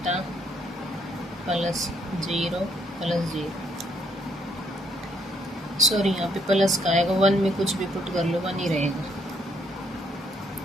plus 0 plus 0। Sorry, यहाँ पे प्लस का आएगा, 1 में कुछ भी पुट कर लो 1 ही रहेगा।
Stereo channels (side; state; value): both; normal; correlation 0.72